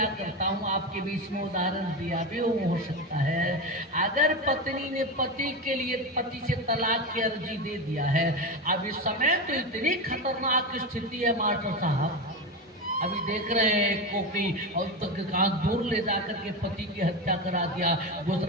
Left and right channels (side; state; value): both; normal; correlation 0.18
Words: करता हूँ, आपके बीच में उदाहरण दिया भी हो सकता है। अगर पत्नी ने पति के लिए पति से तलाक की अर्जी दे दिया है, अब इस समय तो इतनी खतरनाक स्थिति है मास्टर साहब, अभी देख रहे हैं को कि और तक कहाँ दूर ले जाकर के पति की हत्या करा दिया।